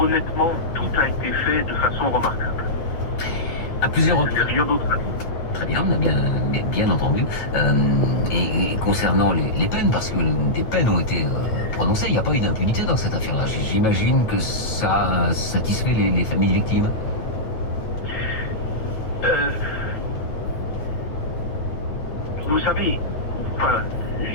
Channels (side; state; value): right; late; 9.0 ms